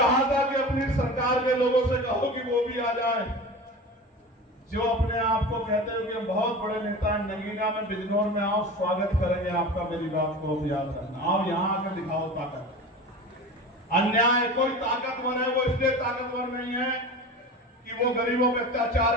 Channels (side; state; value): both; normal; correlation 0.33